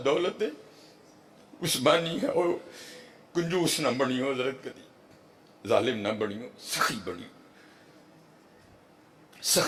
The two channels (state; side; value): identical; both; correlation 1.00